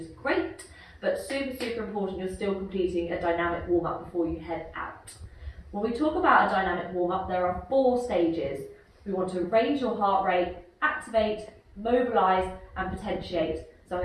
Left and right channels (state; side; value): identical; both; correlation 1.00